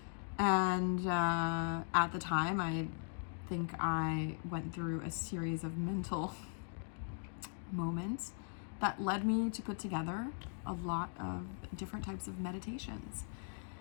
And at the time, I think I went through a series of mental moments that led me to put together a lot of different types of meditations.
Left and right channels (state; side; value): silent; right; digital silence